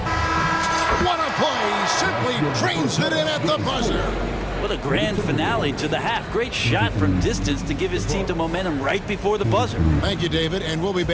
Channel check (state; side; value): identical; both; correlation 1.00